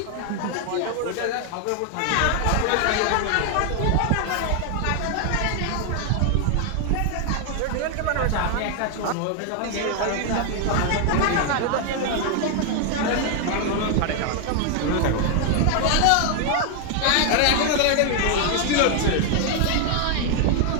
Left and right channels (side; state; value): both; different; correlation 0.00